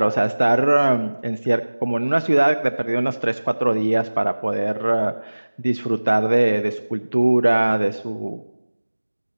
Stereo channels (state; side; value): inverted; both; correlation -1.00